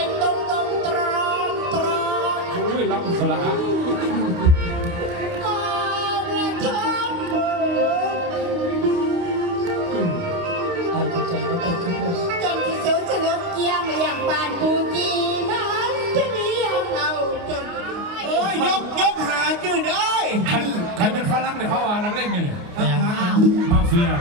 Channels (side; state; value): left; late; 29 ms